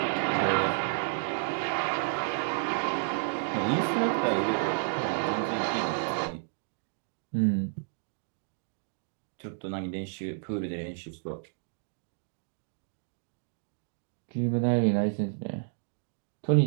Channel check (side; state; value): left; silent; digital silence